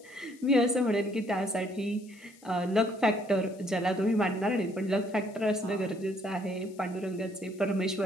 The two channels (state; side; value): noise; left; hiss, 26 dB below the sound